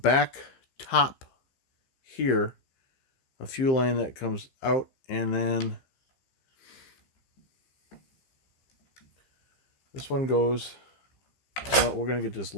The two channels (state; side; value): late; right; 15 ms